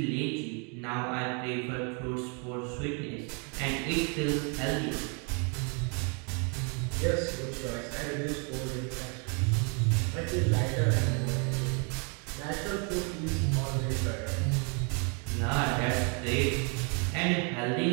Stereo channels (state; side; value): quieter; left; 36.5 dB